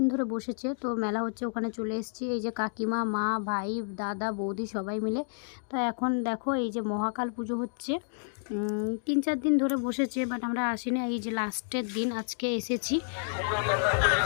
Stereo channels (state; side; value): silent; right; digital silence